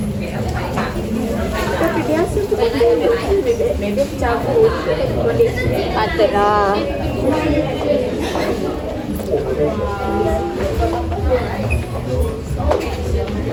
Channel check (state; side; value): identical; both; correlation 1.00